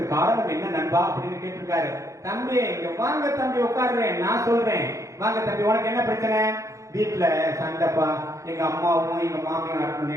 காரணம் என்ன நண்பா அப்படின்னு கேட்டிருக்காரு. தம்பி இங்க வாங்க தம்பி, உட்காருறேன், நான் சொல்றேன். வாங்க தம்பி, உனக்கு என்ன பிரச்சனை? வீட்டுல சண்டைப்பா, எங்க அம்மாவும் எங்க மாமியாருக்கும்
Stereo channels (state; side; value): late; left; 0.15 ms